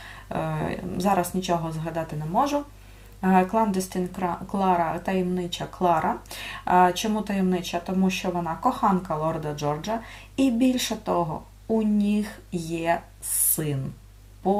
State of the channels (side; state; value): both; identical; correlation 1.00